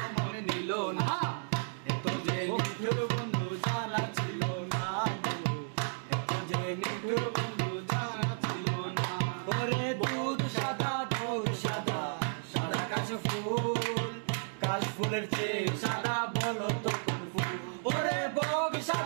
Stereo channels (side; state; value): left; silent; digital silence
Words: মন নিল না, এত যে নিঠুর বন্ধু জানা ছিল না গো, এত যে নিঠুর বন্ধু জানা ছিল না। ওরে দুধ সাদা সাদা কাশ ফুল, কাশ ফুলের চেয়ে সাদা বলো তো কোন ফুল। ওরে বগ